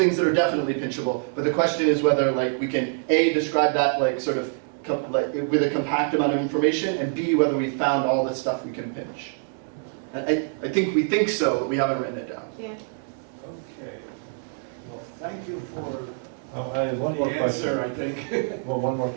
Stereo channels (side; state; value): left; silent; 62 dB below the other